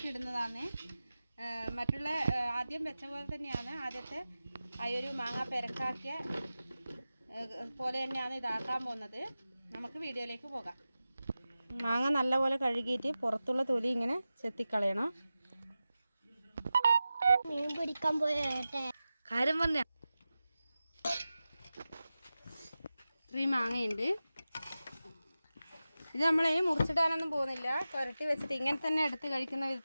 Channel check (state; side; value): inverted; both; correlation -0.94